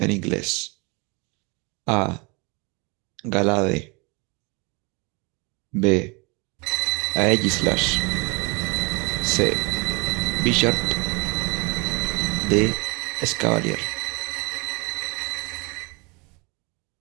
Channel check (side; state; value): left; quieter; 29.1 dB